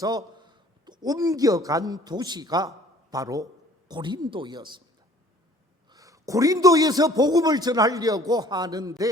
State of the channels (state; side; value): normal; both; correlation 0.53